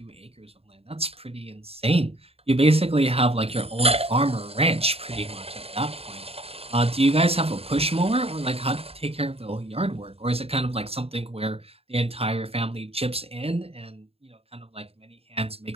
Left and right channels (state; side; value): late; left; 0.29 ms